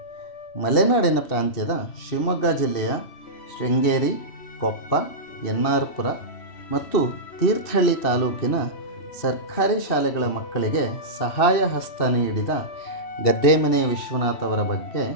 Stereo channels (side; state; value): right; late; 2.7 ms